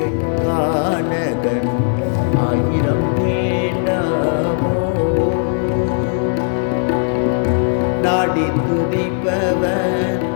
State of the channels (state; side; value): silent; right; digital silence